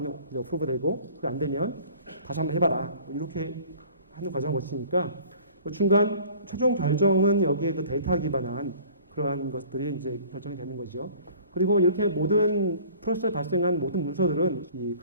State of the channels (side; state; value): both; inverted; correlation -0.48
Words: 어프로브 되고 그게 안 되면 다시 한번 해봐라. 이렇게 하는 과정을 거치니까 중간 최종 결정은 여기에 그 데이터 기반한 그러한 것들이 이제 결정이 되는 거죠. 그리고 이렇게 모든 프로세스에 발생한 모든 문서들은 이